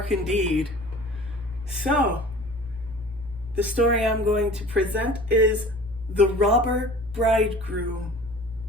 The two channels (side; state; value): right; noise; hum, 18 dB below the sound